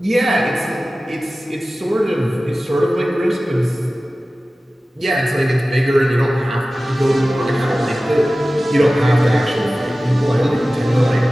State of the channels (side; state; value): both; normal; correlation 0.96